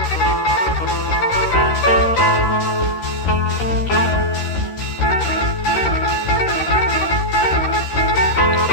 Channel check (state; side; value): late; right; 13 ms